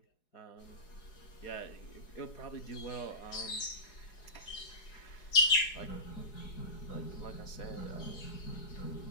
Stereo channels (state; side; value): late; right; 4.8 ms